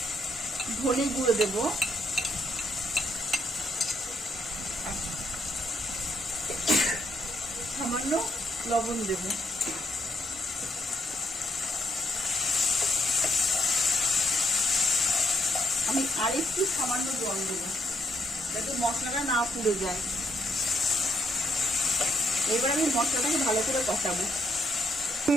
ধনে গুঁড়ো দেব। সামান্য লবণ দেব। আমি আরেকটু সামান্য জল দেব, যাতে মশলাটা না পুড়ে যায়। এবার আমি মশলাটাকে ভালো করে কষাবো।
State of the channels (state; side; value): normal; both; correlation 0.77